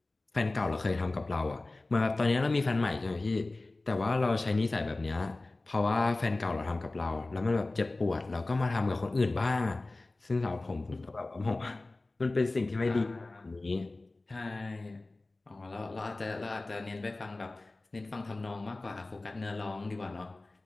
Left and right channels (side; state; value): right; quieter; 3.0 dB